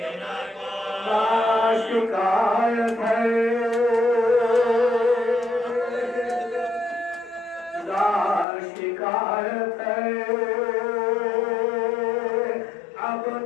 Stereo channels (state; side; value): drops out; right; at 8.5 s